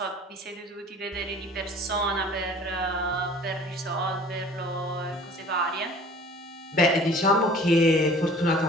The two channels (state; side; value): normal; both; correlation 0.48